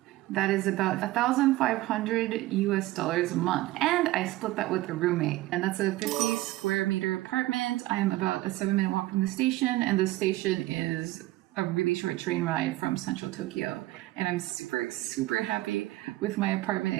That is about 1,500 US dollars a month. And I split that with a roommate. And that's a 50 square meter apartment. I'm about a 7-minute walk from the station, and the station is a really short train ride from central Tokyo. And I'm super happy with my apartment.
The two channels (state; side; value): quieter; left; 17.3 dB